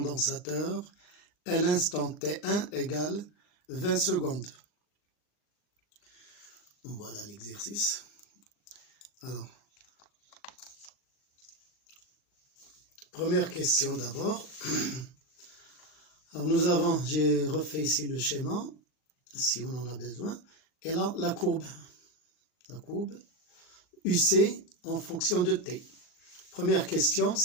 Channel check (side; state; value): right; late; 39 ms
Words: à l'instant T1 égale 20 secondes. Voilà l'exercice. Alors, première question d'abord. Alors nous avons, j'ai refait ici le schéma, si on en a besoin, et là la courbe UC en fonction de T. Première question,